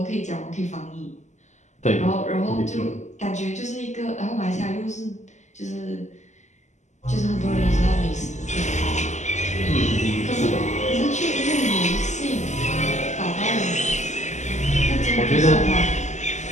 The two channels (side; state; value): right; late; 0.34 ms